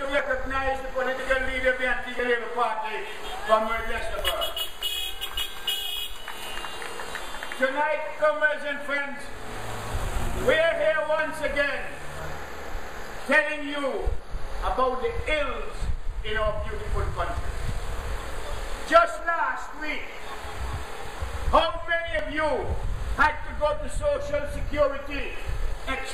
recognize the political leader of the Antigua Labour Party, Comrade Westerberg. Tonight, comrades and friends, we are here once again telling you about the ills in our beautiful country. Just last week, how many of you had to go to Social Security,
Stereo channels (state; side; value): identical; both; correlation 1.00